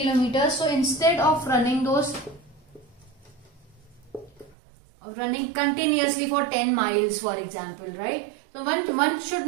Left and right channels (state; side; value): drops out; left; at 4.5 s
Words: so instead of running those, running continuously for 10 miles, for example, right? So one should